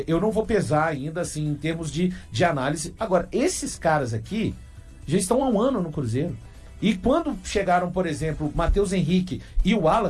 eu não vou pesar ainda, assim, em termos de análise. Agora, esses caras aqui já estão há um ano no Cruzeiro. E quando chegaram, por exemplo, Matheus Henrique e o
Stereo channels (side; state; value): both; identical; correlation 1.00